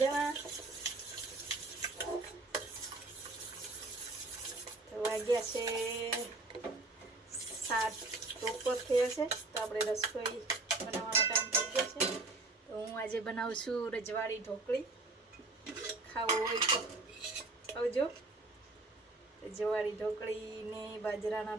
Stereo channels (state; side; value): quieter; left; 3.3 dB